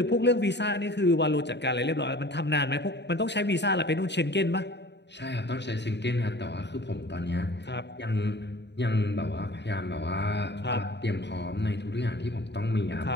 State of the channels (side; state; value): right; late; 0.50 ms